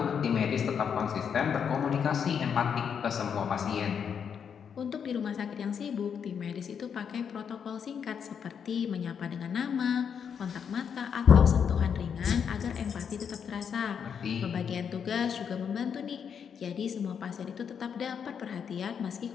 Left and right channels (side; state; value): right; quieter; 7.3 dB